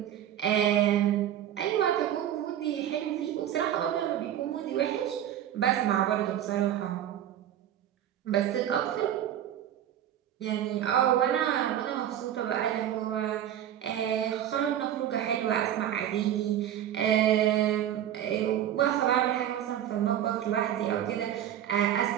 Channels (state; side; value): quieter; left; 11.0 dB